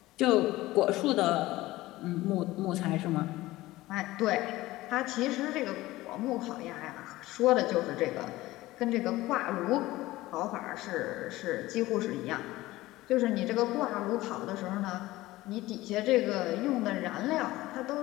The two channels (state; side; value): quieter; right; 17.8 dB